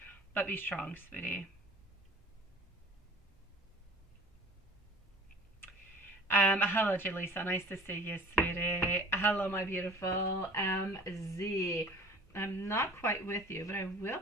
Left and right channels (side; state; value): both; normal; correlation 0.44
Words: but be strong, sweetie. Hello, Jaleesa. Nice to see you, sweetie. Hello, my beautiful MZ. I'm not quite with you, but I will